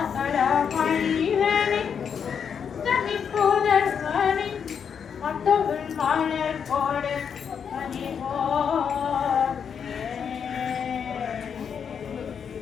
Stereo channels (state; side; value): quieter; right; 7.2 dB